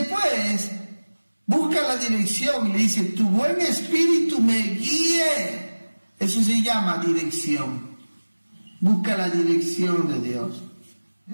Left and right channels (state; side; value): inverted; both; correlation -1.00